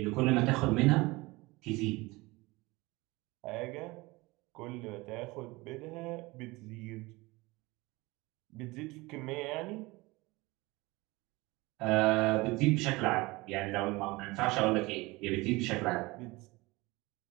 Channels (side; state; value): left; quieter; 22.5 dB